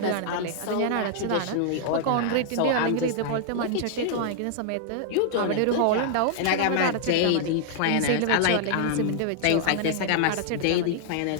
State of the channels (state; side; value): different; both; correlation -0.01